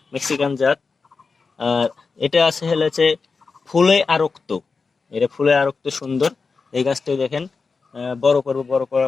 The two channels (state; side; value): quieter; right; 4.6 dB